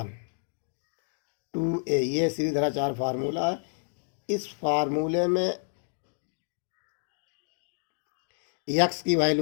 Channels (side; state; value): right; silent; digital silence